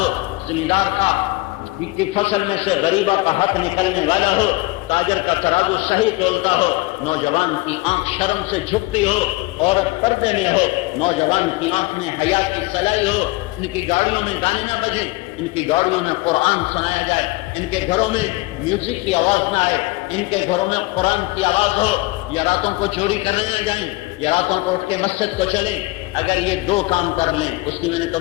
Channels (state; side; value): quieter; right; 21.8 dB